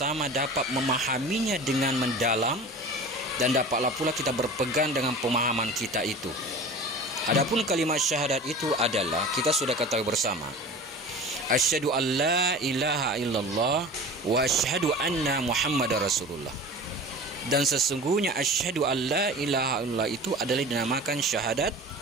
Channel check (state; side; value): normal; both; correlation 0.37